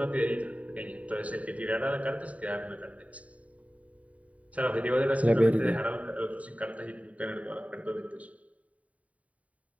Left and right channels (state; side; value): late; left; 0.068 ms